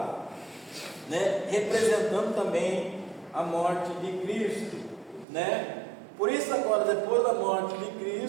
né? Representando também a morte de Cristo, né? Por isso agora, depois da morte de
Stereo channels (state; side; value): drops out; left; at 5.2 s